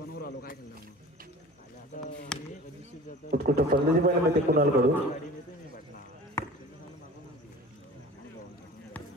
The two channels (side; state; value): both; normal; correlation 0.41